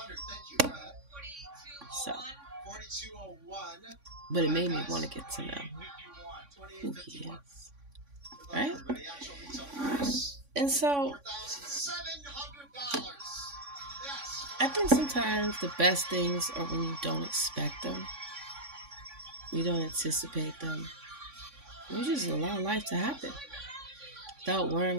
So, but it made me want to get to know who he is, right? And so, I think sometimes the best things are when you don't expect them. You don't anticipate them. You just allow life to happen without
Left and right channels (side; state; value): left; late; 3.5 ms